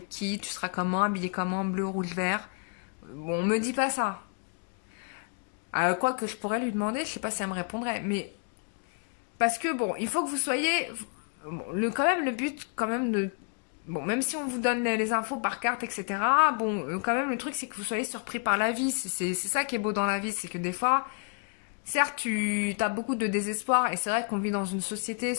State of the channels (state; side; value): quieter; right; 39.3 dB